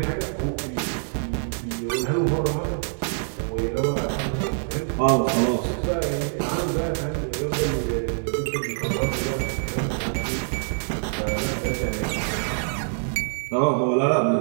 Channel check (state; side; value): silent; left; digital silence